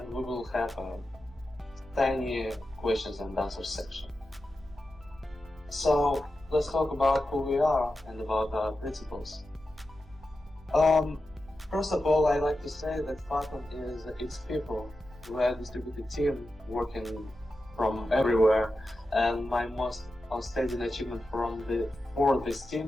we will have a tiny questions and answers section. So let's talk about who we are and about our principles. First of all, I like to say that Fathom is its people. We are a distributed team working from everywhere, and my most outstanding achievement for this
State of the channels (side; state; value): both; normal; correlation 0.91